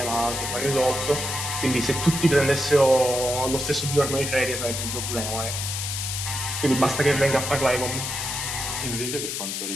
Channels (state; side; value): noise; left; hiss, 3 dB below the sound